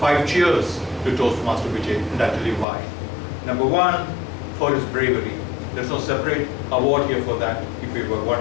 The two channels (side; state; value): right; drops out; at 2.7 s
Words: cheers to Toastmaster Vijay, and I'll tell you why. Number 1, for his bravery. There's no separate award here for that. If we